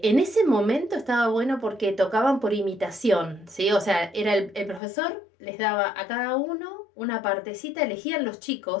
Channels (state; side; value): drops out; right; at 4.8 s